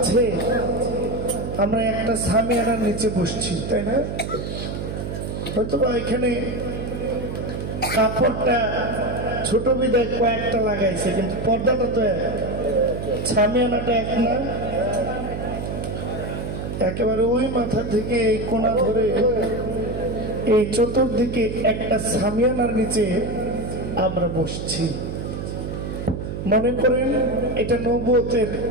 আমরা একটা সামিয়ানার নিচে বসছি, তাই না? হয়তো এখানে কাপড়টা ছোট বিদায় কয়েকটা লাগাইছে, কিন্তু পর্দাটা তো এক, সামিয়ানাটা এক না। একেবারে ওই মাথা থেকে এই কোণা ধরে এই চতুর্দিকে একটা সামিয়ানার নিচে আমরা বসছি। মনে করেন এটা নবুয়তের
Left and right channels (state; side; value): noise; right; hum, 5 dB below the sound